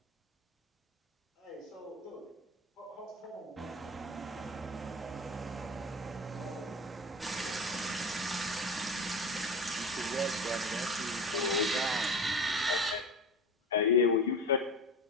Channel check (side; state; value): both; normal; correlation 0.31